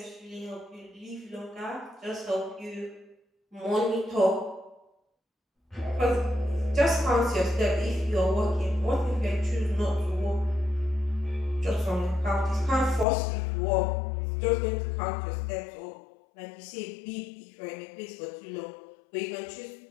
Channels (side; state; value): right; drops out; at 13.1 s